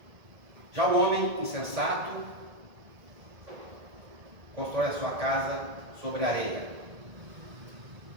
Já o homem insensato constrói a sua casa sobre areia,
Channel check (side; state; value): left; late; 1.7 ms